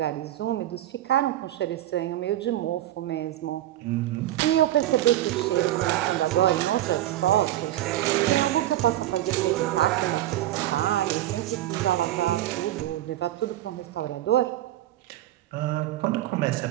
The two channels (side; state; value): left; quieter; 13.8 dB